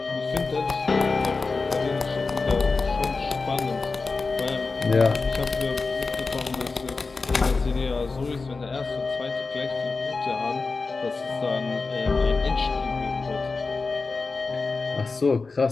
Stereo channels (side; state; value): right; quieter; 4.1 dB